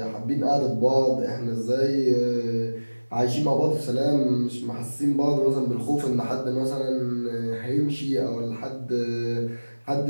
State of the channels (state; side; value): inverted; both; correlation -1.00